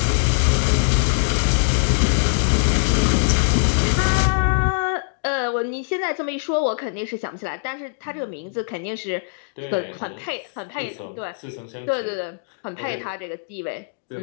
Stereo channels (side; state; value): right; silent; digital silence